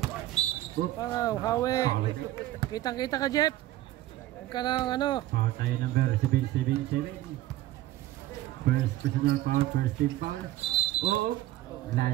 Wow, Hawi. Kitang-kita ka, Jeff. Huwag ka ng ano. Foul tayo number 777. First personal foul, first team foul. Oo.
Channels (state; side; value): quieter; left; 15.1 dB